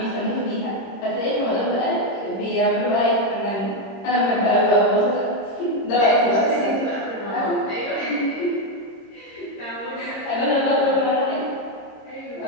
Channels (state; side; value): late; right; 26 ms